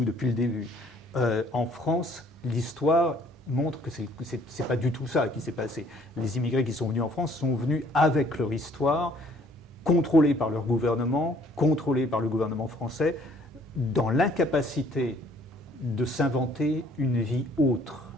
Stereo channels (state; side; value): normal; both; correlation 0.60